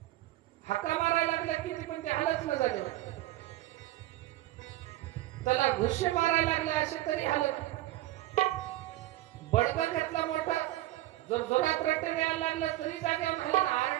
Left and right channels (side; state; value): left; quieter; 15.8 dB